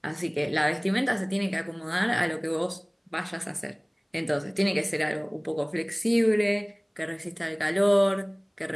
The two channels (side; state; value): both; identical; correlation 1.00